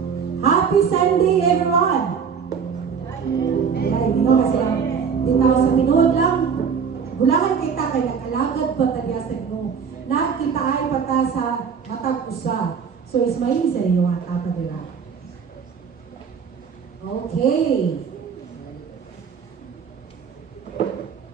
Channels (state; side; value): quieter; left; 6.5 dB